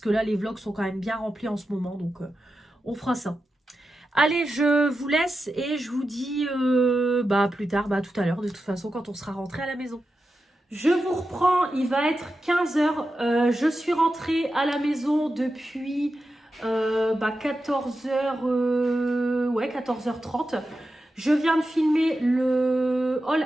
que là, les vlogs sont quand même bien remplis en ce moment, donc on fera ça. Allez, je vous laisse et je vous dis plus tard, tout à l'heure, de toute façon, quand on sera rentré à la maison. Je vous reprends, il va être 15 h. Je suis rentrée à la maison depuis 14h, 14h30. Je viens de filmer le haul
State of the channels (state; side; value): normal; both; correlation 0.90